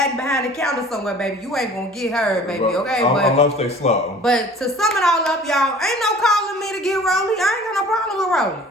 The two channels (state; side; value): normal; both; correlation 0.47